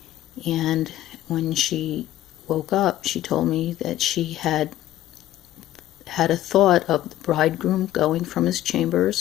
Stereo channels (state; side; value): quieter; right; 13.9 dB